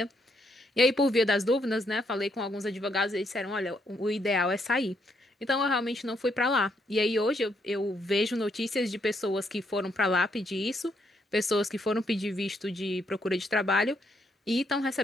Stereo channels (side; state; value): both; normal; correlation 0.75